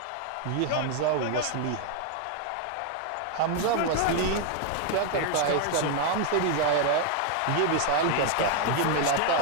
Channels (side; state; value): both; different; correlation 0.00